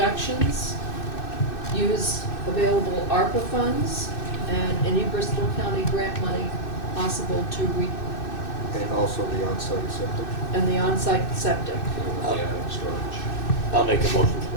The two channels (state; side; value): late; right; 2.6 ms